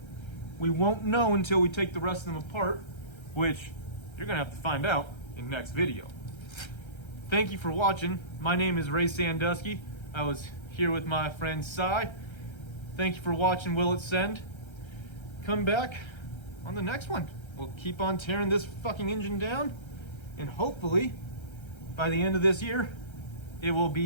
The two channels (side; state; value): right; late; 1.3 ms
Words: we won't know until we take the rest of them apart, which you're gonna have to find out in next video. Thank you for watching. My name is Ray Sandusky. I was here with my friend Si. Thank you for watching Will It Send. Come back on the next one. We'll keep on tearing this fucking engine down, and hopefully by the end of this year it will